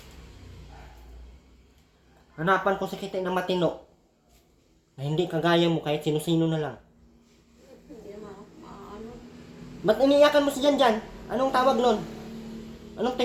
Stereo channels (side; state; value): both; identical; correlation 1.00